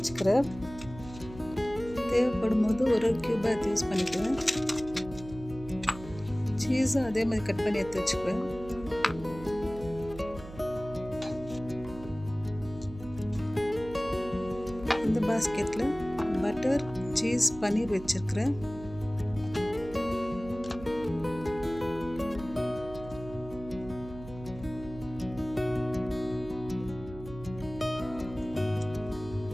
தேவைப்படும் போது ஒரு க்யூபாக எடுத்து யூஸ் பண்ணிக்குவேன். சீஸும் அதே மாதிரி கட் பண்ணி எடுத்து வச்சுக்குவேன். இந்த பாஸ்கெட்டில் பட்டர், சீஸ், பன்னீர் வச்சுருக்கிறேன்.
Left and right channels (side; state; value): right; noise; hum, 14 dB below the sound